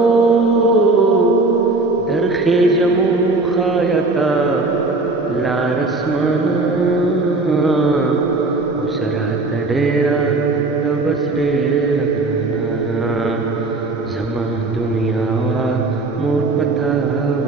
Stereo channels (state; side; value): quieter; left; 3.3 dB